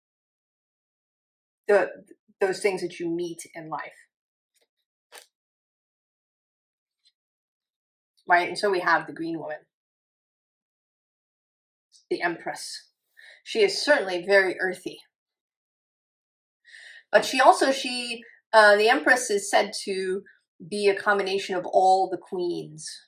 those things that you meet in life. Right? And so we have the Green Woman, the Empress. She is certainly very earthy. But she also, the Empress is said to be a combination of all the queens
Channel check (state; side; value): identical; both; correlation 1.00